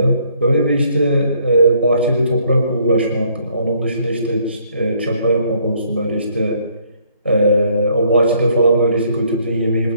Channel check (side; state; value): both; inverted; correlation -0.66